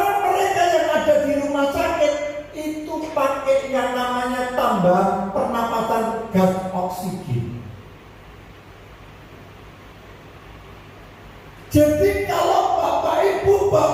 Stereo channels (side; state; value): both; identical; correlation 1.00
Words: mereka yang ada di rumah sakit itu pakai yang namanya tambahan pernapasan gas oksigen. Jadi kalau Bapak Ibu